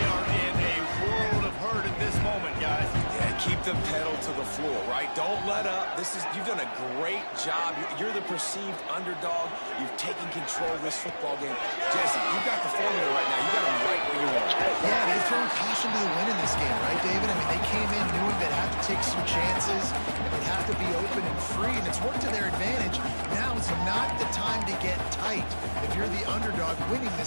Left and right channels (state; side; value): inverted; both; correlation -1.00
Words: are in a world of hurt at this moment, guys. Yeah, keep the pedal to the floor, right? Don't let up. You've done a great job. You're the perceived underdog. You've taken control of this football game. Jesse, you've got the formula right now. You got them right where you want. Yeah, they've thrown caution to the wind in this game, right, David? I mean, they came in knowing they'd have to take some chances, and they'd have to be open and free, and it's worked to their advantage. Now is not the time to get tight if you're the underdog winning